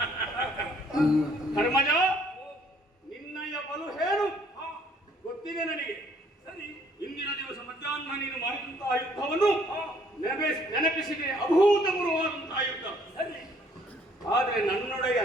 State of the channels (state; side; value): normal; both; correlation 0.63